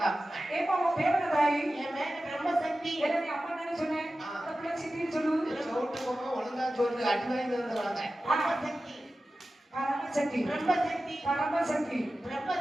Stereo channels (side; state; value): both; normal; correlation 0.94